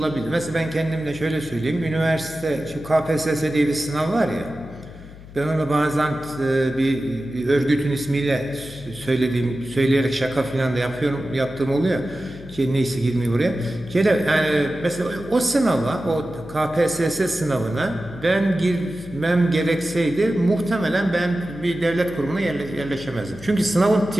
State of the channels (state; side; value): noise; left; hum, 17 dB below the sound